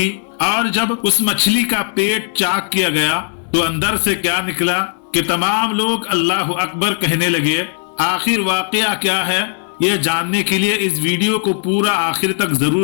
और जब उस मछली का पेट चाक किया गया तो अंदर से क्या निकला कि तमाम लोग अल्लाह अकबर कहने लगे। आखिर वाकया क्या है, ये जानने के लिए इस वीडियो को पूरा आखिर तक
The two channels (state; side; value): silent; right; 58 dB below the other